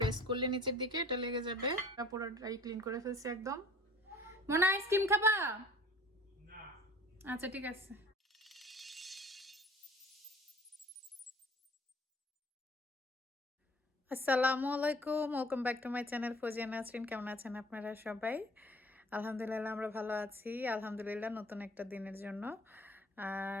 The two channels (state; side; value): normal; both; correlation 0.49